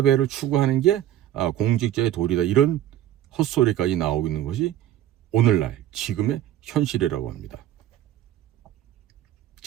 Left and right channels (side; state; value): left; quieter; 12.1 dB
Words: 추구하는 게 공직자의 도리다, 이런 헛소리까지 나오고 있는 것이 오늘날 지금의 현실이라고 합니다.